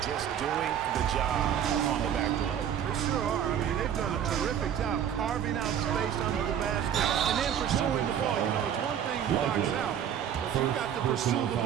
Just doing the job on the backboard. They sure are. I mean, they've done a terrific job carving out space under the basket and then pursuing the ball. You know, it's one thing to box out, but you've got to pursue the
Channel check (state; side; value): quieter; left; 9.3 dB